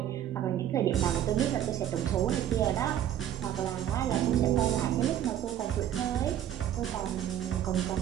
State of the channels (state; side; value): quieter; left; 11.0 dB